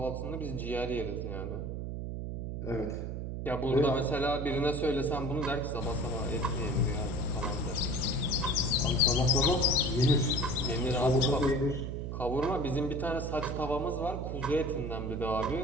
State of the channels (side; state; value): right; noise; hum, 4 dB below the sound